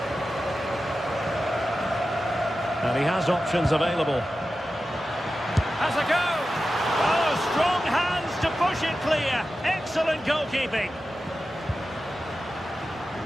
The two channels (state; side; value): normal; both; correlation 0.93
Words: And he has options available. Has a go! Oh, strong hands to push it clear. Excellent goalkeeping.